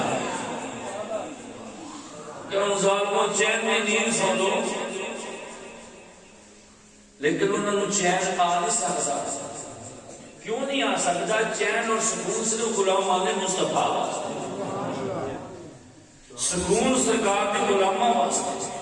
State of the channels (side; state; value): both; identical; correlation 1.00